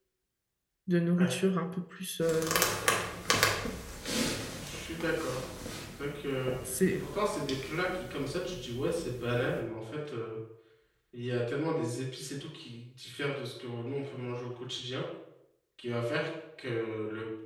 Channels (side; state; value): both; identical; correlation 1.00